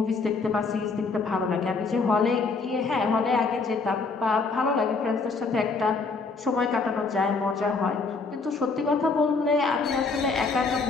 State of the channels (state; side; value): quieter; right; 4.2 dB